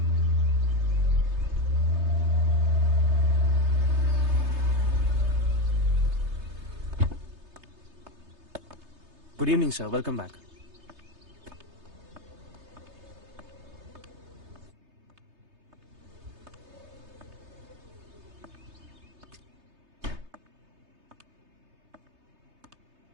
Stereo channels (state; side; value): late; left; 3.3 ms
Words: Good evening sir, welcome back.